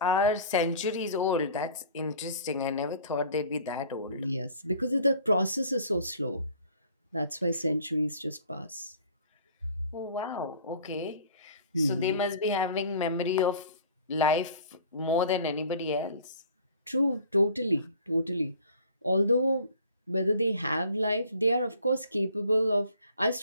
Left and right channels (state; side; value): inverted; both; correlation -0.50